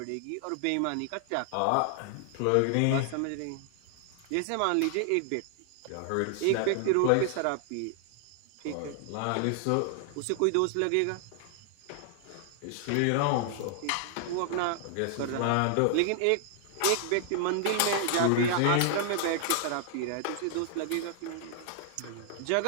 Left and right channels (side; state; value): both; different; correlation 0.00